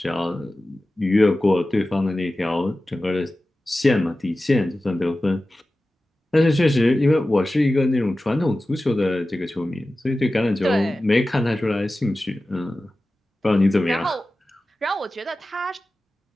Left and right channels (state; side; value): normal; both; correlation 0.95